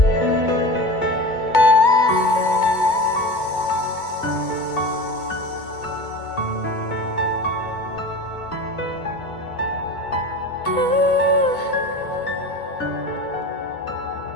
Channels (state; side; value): late; right; 2.2 ms